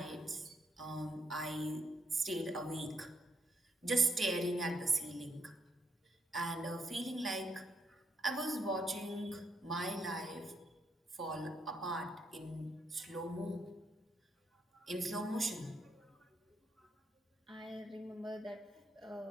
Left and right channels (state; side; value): normal; both; correlation 0.76